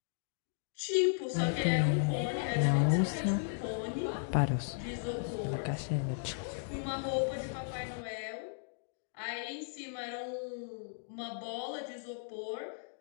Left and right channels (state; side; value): silent; right; digital silence